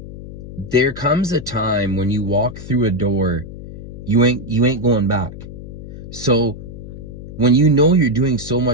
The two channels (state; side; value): noise; left; hum, 12 dB below the sound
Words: there comes a time when you walk through a door, you ain't going back. So when you know you're doing so